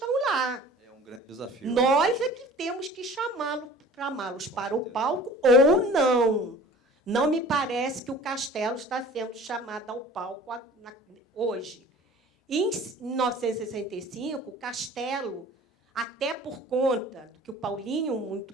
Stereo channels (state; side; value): normal; both; correlation 0.45